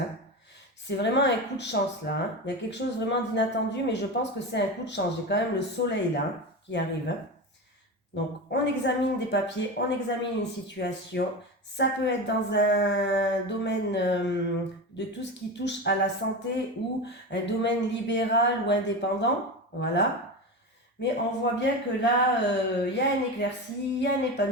C'est vraiment un coup de chance là. Il y a quelque chose vraiment d'inattendu, mais je pense que c'est un coup de chance. J'ai quand même le soleil là qui arrive. Donc, on examine des papiers, on examine une situation. Ça peut être dans un domaine de tout ce qui touche à la santé ou un domaine libéral ou indépendant. Voilà. Mais on voit bien que là, il y a une éclaircie, il y a un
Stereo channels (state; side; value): normal; both; correlation 0.23